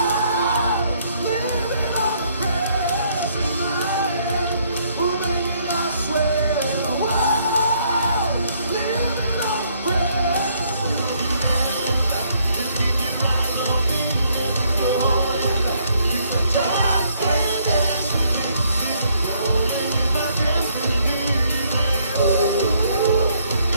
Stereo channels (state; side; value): inverted; both; correlation -0.68